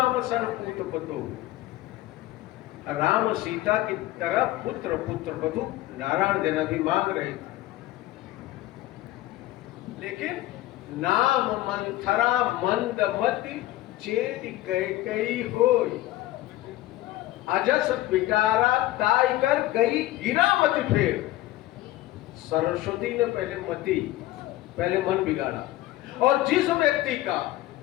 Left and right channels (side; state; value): right; quieter; 16.2 dB